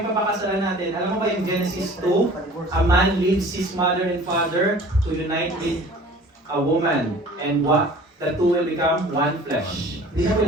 papakasalan natin. Alam mo ba yung Genesis 2? A man leaves his mother and father to unite with a woman. And what? The two will become one flesh. Hindi na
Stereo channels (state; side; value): normal; both; correlation 0.46